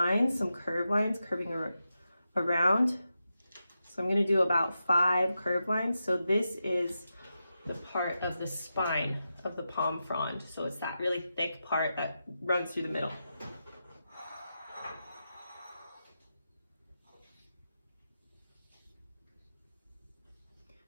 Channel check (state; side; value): inverted; both; correlation -0.89